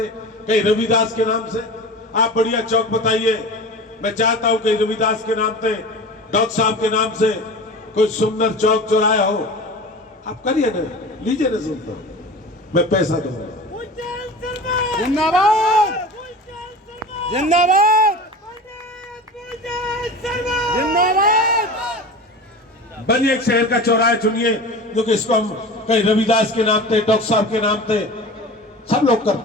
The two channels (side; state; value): both; normal; correlation 0.34